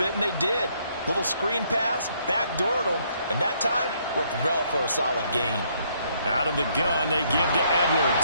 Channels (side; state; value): both; inverted; correlation -0.69